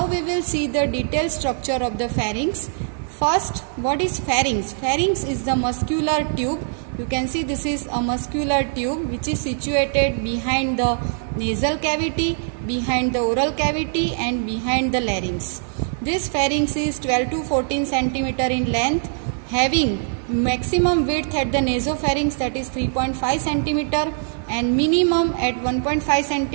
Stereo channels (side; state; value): left; silent; digital silence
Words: we will see the detailed structure of the pharynx. First, what is pharynx? Pharynx is the muscular tube. You can see this is a muscular tube which is situated behind the nasal cavity, behind the oral cavity and behind the larynx. This pharynx is 12 to 14 cm in length, having maximum width at the nasopharynx, that is 3.5 cm, and minimum at 1.5